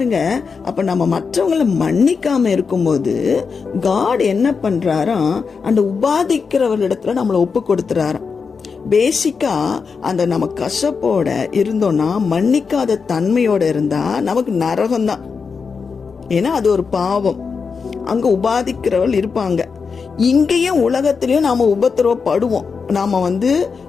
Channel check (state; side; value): quieter; right; 5.3 dB